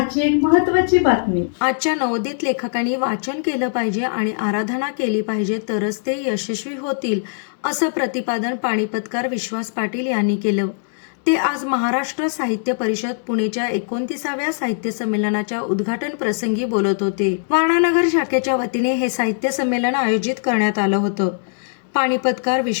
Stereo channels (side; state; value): right; silent; digital silence